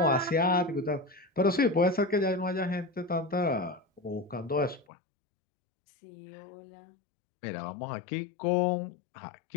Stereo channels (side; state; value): right; drops out; at 4.9 s